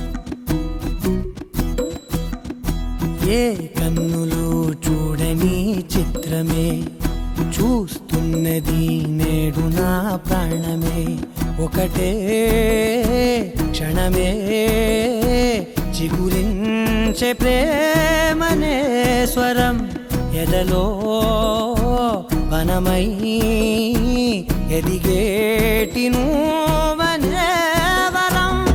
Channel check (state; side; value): identical; both; correlation 1.00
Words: ఏ కన్నులు చూడని చిత్రమే చూస్తున్నది నేడు నా ప్రాణమే. ఒకటే క్షణమే చిగురించే ప్రేమనే స్వరం ఎదలో వనమై ఎదిగేటి నువ్వనే వరం.